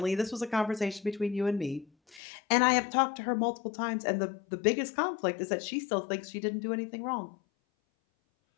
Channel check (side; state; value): right; drops out; at 2.2 s